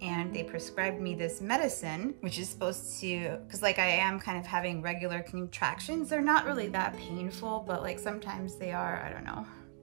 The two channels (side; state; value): left; silent; digital silence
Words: they prescribed me this medicine, which is supposed to, because like I am kind of having regular contractions. They're not really that painful, but like sometimes they are. I don't know,